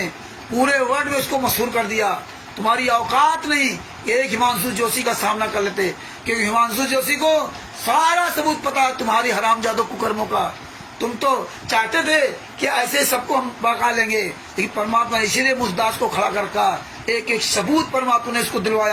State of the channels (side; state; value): both; identical; correlation 1.00